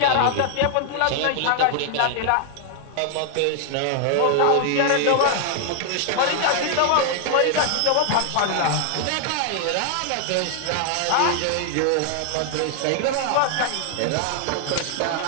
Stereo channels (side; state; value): both; different; correlation 0.00